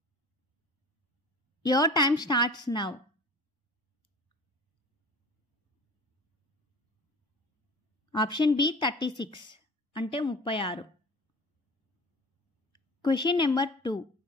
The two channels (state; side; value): normal; both; correlation 0.40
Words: Your time starts now. Option B 36 అంటే 36. Question number 2.